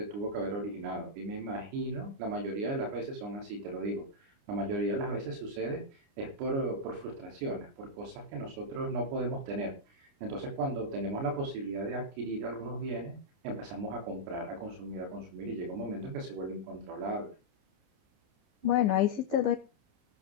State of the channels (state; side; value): late; left; 29 ms